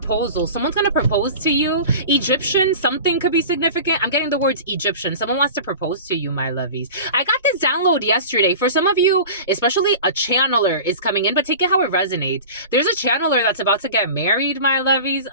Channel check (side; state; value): both; inverted; correlation -0.36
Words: Someone's gonna propose to you. Egyptian, something could be significant. I'm getting the words Egyptian. Someone wants to propose to you, my lovies. I got this download yesterday. For some of you, especially a channeler is coming in, but take it how it resonates. There's a channeler that's about to get married, my lovies.